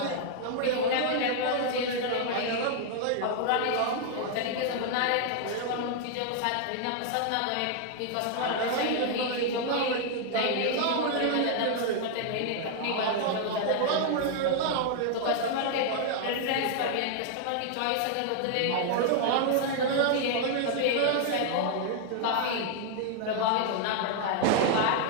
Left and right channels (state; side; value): different; both; correlation 0.00